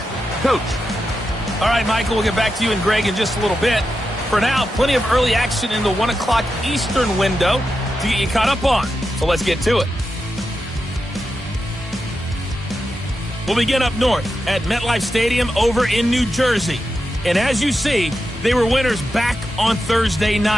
Coach. All right, Michael, we'll get back to you and Greg in just a little bit. For now, plenty of early action in the 1 o'clock Eastern window to get you caught up on. So let's get to it. We'll begin up north at MetLife Stadium over in New Jersey. And as you see, they were winners back on Thursday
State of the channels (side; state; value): both; normal; correlation 0.89